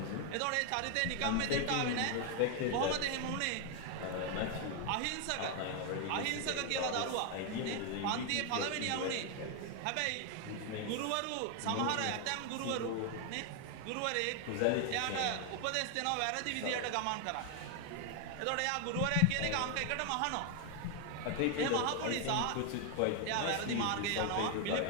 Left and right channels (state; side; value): different; both; correlation 0.01